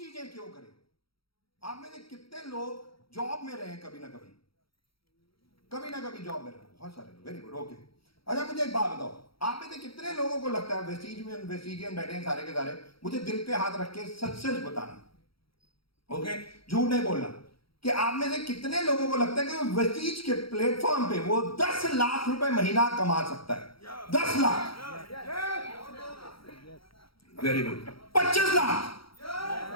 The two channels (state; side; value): late; right; 0.75 ms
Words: क्यों करें। आप में से कितने लोग जॉब में रहे कभी ना कभी जॉब में रहे? बहुत सारे लोग। Very good, okay. अच्छा मुझे एक बात बताओ, आप में से कितने लोगों को लगता है वेस्टिजियन बैठे हैं सारे के सारे, मुझे दिल पे हाथ रख के सच सच बताना, ओके, झूठ नहीं बोलना, कि आप में से कितने लोगों को लगता है कि वेस्टीज के प्लेटफॉर्म पे वो 10 लाख रुपए महीना कमा सकता है? 10 लाख। Very good. 25 लाख,